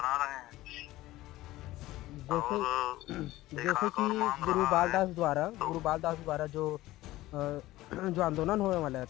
रहे हैं। जैसे कि गुरुबाल दास द्वारा जो आंदोलन होने वाला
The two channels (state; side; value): quieter; right; 16.9 dB